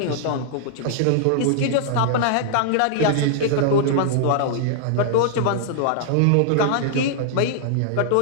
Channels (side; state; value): both; different; correlation -0.01